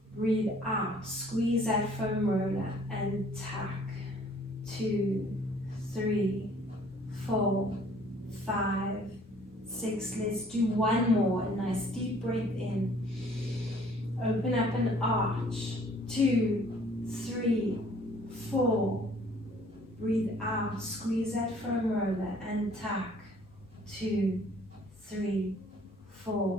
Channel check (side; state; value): both; normal; correlation 0.57